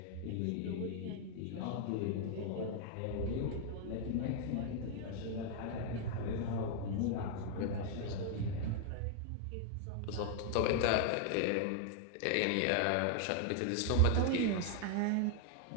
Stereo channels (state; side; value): different; both; correlation 0.00